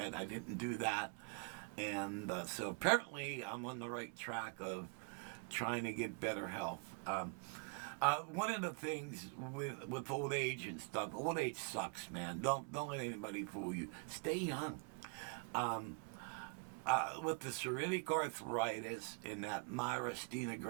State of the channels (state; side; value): quieter; left; 34.2 dB